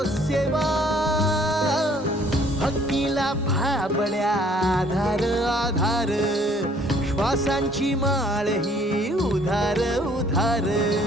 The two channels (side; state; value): both; normal; correlation 0.59